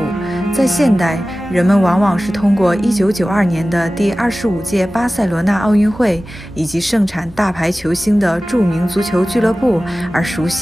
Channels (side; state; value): both; normal; correlation 0.96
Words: 在现代，人们往往是通过1992年的第25届巴塞罗那奥运会以及盛产大牌球星的著名足球俱乐部而熟